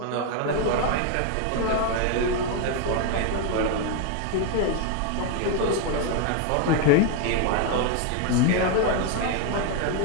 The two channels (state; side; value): different; both; correlation 0.01